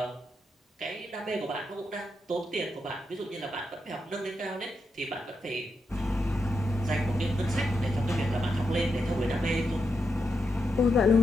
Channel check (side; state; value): both; normal; correlation 0.85